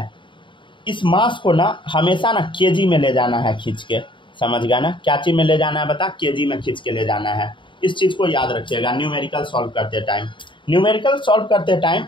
इस मास को ना हमेशा ना केजी में ले जाना है खींच के, समझ गया ना। क्या चीज़ में ले जाना है बता, केजी में खींच के ले जाना है। इस चीज़ को याद रखिएगा न्यूमेरिकल सॉल्व करते टाइम। न्यूमेरिकल सॉल्व करते टाइम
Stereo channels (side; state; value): right; late; 0.24 ms